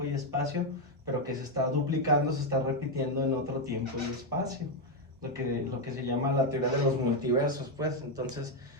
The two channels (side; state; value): both; normal; correlation 0.04